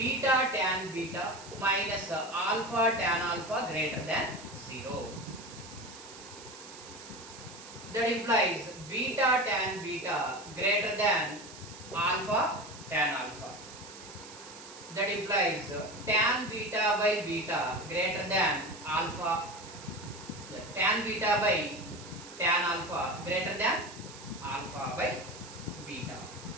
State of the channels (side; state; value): right; noise; hiss, 16 dB below the sound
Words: tan beta minus alpha tan alpha greater than 0. That implies beta tan beta greater than alpha tan alpha. That implies tan beta by beta greater than alpha, tan beta by tan alpha greater than alpha by beta.